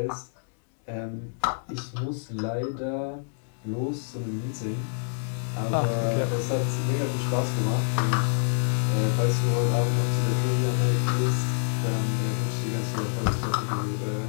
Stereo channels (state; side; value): silent; right; digital silence